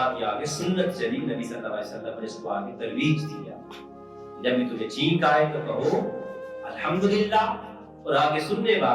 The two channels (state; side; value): identical; both; correlation 1.00